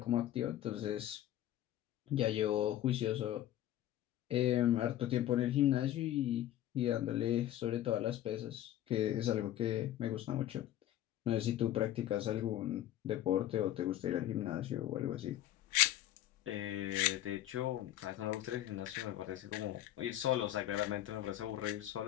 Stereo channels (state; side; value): quieter; right; 12.8 dB